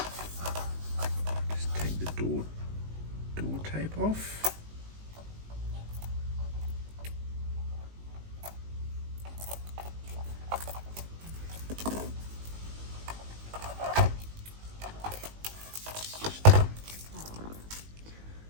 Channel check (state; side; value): late; left; 19 ms